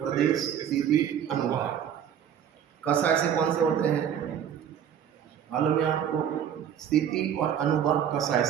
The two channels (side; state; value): left; quieter; 9.0 dB